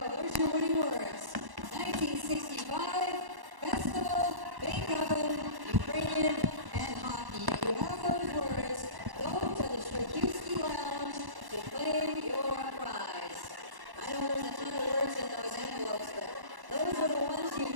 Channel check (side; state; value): left; late; 1.1 ms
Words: There's your winning words. 1965, Festival, Beethoven, Ukrainian, and hockey. If you have those words, go to the Straczewski Lounge to claim your prize. I know there's a ton of words in those envelopes, but those are the ones you